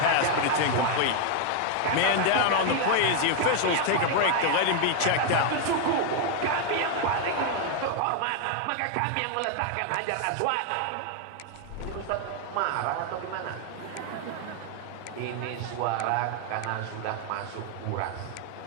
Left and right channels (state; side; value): different; both; correlation 0.00